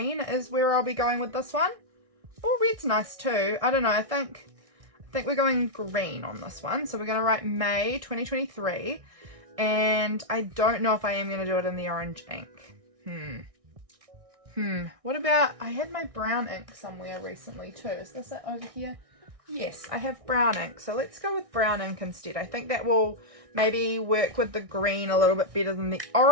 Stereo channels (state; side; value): late; left; 1.6 ms